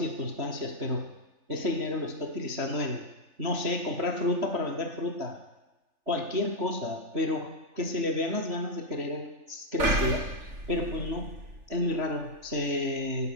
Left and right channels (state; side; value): late; left; 3.4 ms